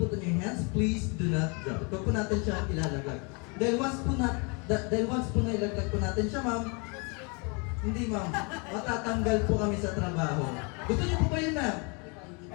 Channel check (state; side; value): quieter; right; 32.6 dB